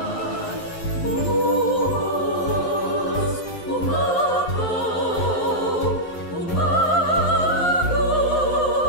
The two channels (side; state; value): right; late; 11 ms